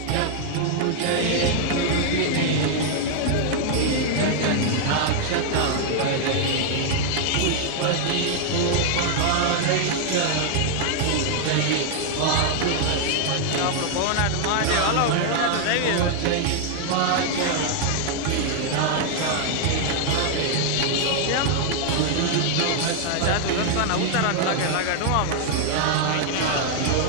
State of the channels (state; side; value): different; both; correlation 0.00